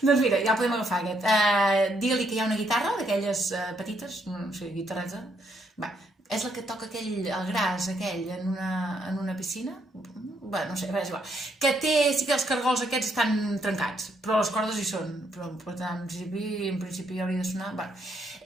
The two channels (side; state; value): both; normal; correlation 0.74